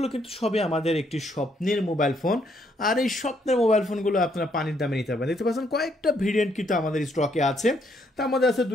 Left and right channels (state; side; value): normal; both; correlation 0.72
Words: কিন্তু সবই আমাদের একটি স্বপ্নের মোবাইল ফোন। আর এই স্বপ্নের মোবাইল ফোনগুলো আপনারা পানির দামে নিতে পারবেন। দেখতে পাচ্ছেন কয়েকটা ভেরিয়েন্ট কিন্তু আমাদের স্টকে আছে। তার মধ্যে আছে